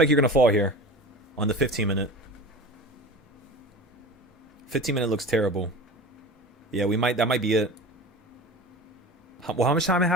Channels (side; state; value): both; normal; correlation 0.35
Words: you're going to fall here on the 15-minute. 15-minute looks terrible. Yeah, that might be it. Well, how much time it